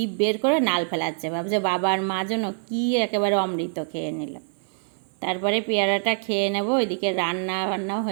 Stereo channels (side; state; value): left; silent; 62 dB below the other